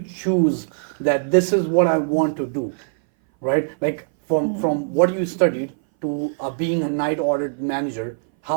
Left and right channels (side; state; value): left; silent; 60 dB below the other